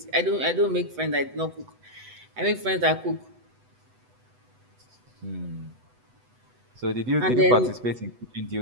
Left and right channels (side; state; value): left; late; 8.0 ms